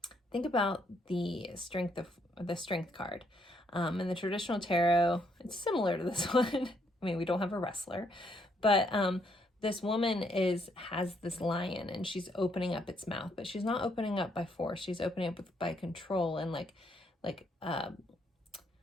think about the strength card. In the traditional tarot, it's similar to this one. I mean, we don't have a wrestler, but this woman has this lion, and she's opening up its mouth, but she's not opening up by force. She's opening up by control and like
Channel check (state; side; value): normal; both; correlation 0.72